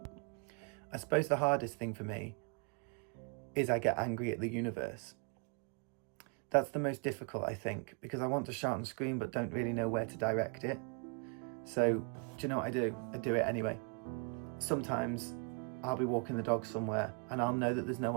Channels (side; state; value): left; quieter; 36.2 dB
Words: I suppose the hardest thing for me is I get angry at the universe. That's the most difficult, I think, because I want to shout and scream but don't really know where to direct it. So, do you know what I do? I do it anyway. Sometimes I'll be walking the dog somewhere and I'll know that there's no